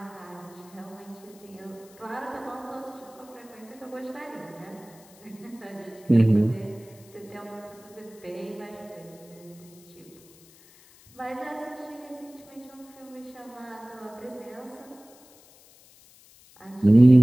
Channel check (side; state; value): left; noise; hiss, 25 dB below the sound